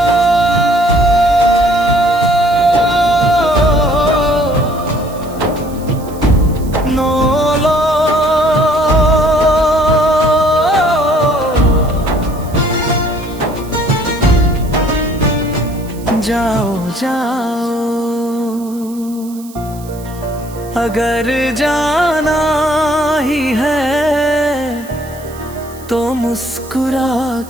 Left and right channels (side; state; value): right; noise; hiss, 21 dB below the sound